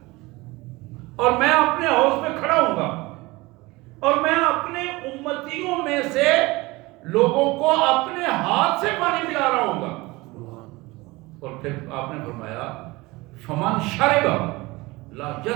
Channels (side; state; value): left; quieter; 21.9 dB